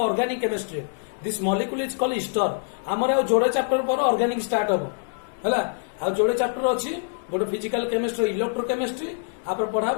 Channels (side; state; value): right; silent; 62 dB below the other